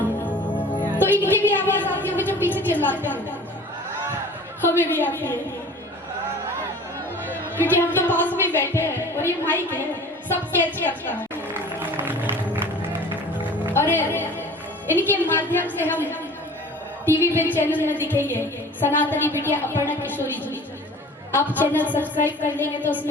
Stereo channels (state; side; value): normal; both; correlation 0.43